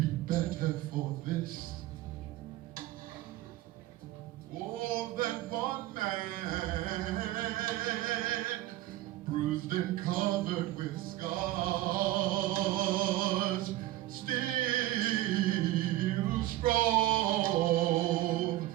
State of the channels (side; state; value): left; quieter; 15.8 dB